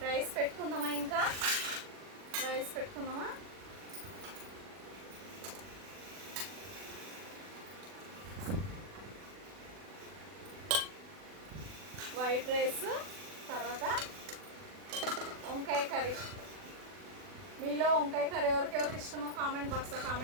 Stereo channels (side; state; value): left; late; 40 ms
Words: రైస్ పెట్టుకుందామా? ఇంకా రైస్ పెట్టుకుందామా? వైట్ రైస్, తర్వాత వంకాయ కర్రీ. మీలో వంకాయ కర్రీ ఎవరికి ఇష్టమో కామెంట్ బాక్స్లో